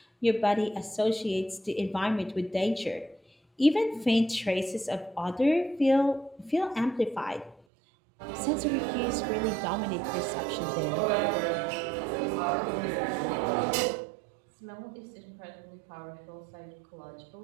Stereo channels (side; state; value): left; drops out; at 7.6 s